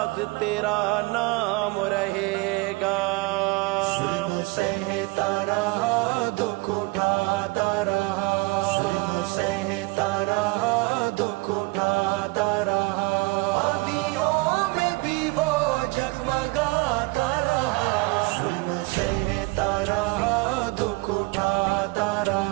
تیرا نام رہے گا۔ ظلم سہتا رہا، دکھ اٹھاتا رہا، ظلم سہتا رہا، دکھ اٹھاتا رہا، آندھیوں میں بھی وہ جگمگاتا رہا، ظلم سہتا رہا، دکھ اٹھاتا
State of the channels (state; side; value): quieter; left; 24.7 dB